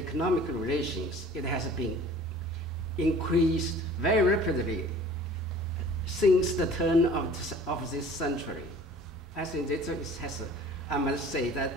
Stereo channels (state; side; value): normal; both; correlation 0.47